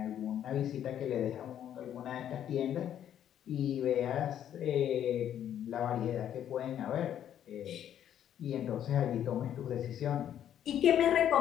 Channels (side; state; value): right; quieter; 10.3 dB